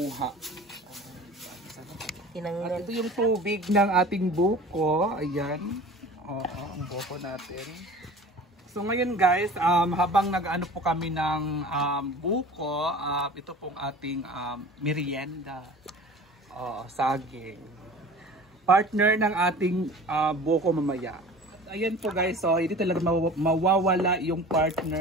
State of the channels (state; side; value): normal; both; correlation 0.41